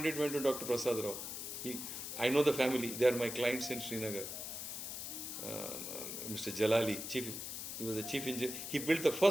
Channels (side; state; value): left; noise; hiss, 6 dB below the sound